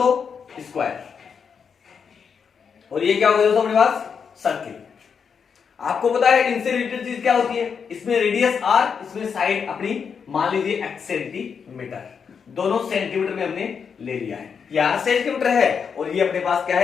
स्क्वायर, और ये क्या हो गया दोस्तों अपने पास सर्किल। आपको पता है इनसे रिलेटेड चीज क्या होती है, इसमें रेडियस r, इसमें साइड अपनी मान लीजिए x सेंटीमीटर, दोनों सेंटीमीटर में हमने ले लिया है। यहां सेंटीमीटर है और ये अपने पास क्या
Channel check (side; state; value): right; quieter; 6.5 dB